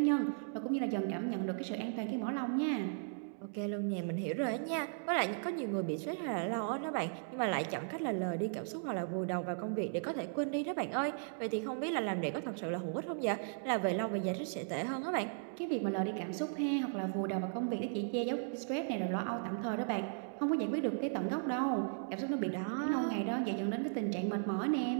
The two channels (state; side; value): silent; left; digital silence